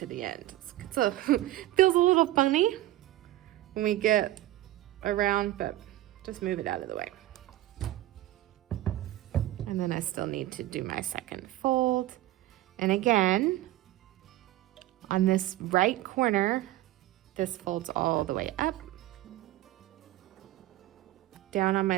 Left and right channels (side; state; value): left; quieter; 15.5 dB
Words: the end. Feels a little funny when we get around, but just move it out of the way. And then I still need to do my second fold. And again, on this right corner, this folds all the way up. Down on